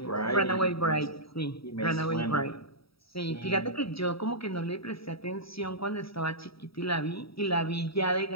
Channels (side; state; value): right; late; 0.76 ms